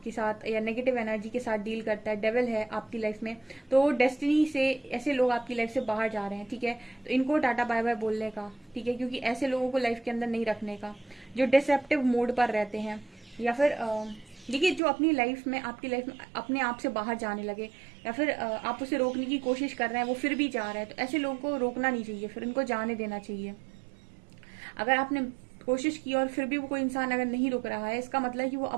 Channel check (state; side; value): drops out; left; at 14.8 s